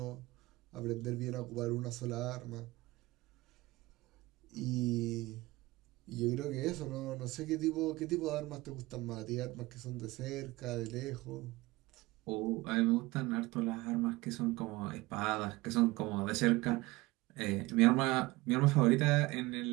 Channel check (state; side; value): quieter; left; 20.7 dB